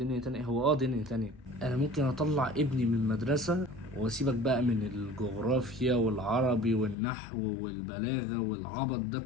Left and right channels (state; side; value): drops out; right; at 7.0 s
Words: تانية، هو دنيا تانية. انا ممكن اطلع ابني من المدرسة واسيبك بقى من الجغرافيا والعربي والنحو والبلاغة والعبط ده